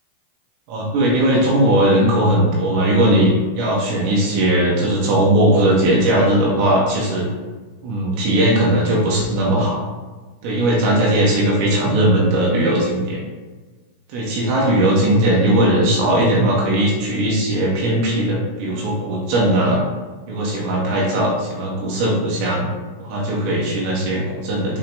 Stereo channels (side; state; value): left; late; 17 ms